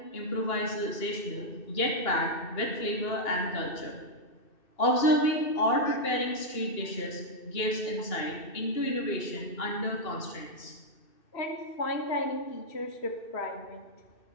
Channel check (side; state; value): right; late; 2.6 ms